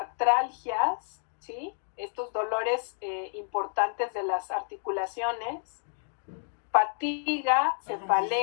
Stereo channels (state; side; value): silent; right; 58 dB below the other